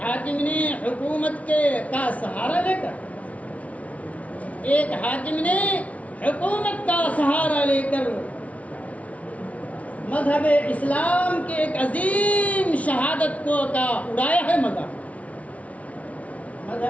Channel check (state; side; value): late; right; 0.067 ms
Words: حاکم نے حکومت کا سہارا لے کر، ایک حاکم نے حکومت کا سہارا لے کر مذہب اسلام کے ایک عظیم شہادت کو کا اڑایا ہے مذاق۔